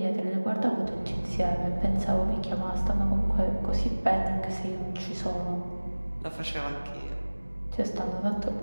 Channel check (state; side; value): inverted; both; correlation -1.00